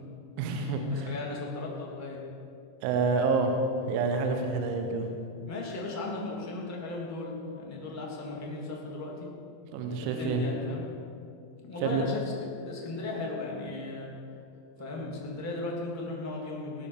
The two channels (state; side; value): late; left; 23 ms